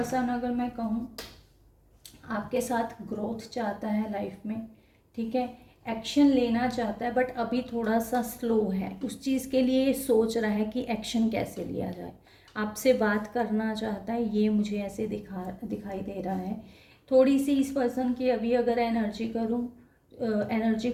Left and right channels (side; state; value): both; identical; correlation 1.00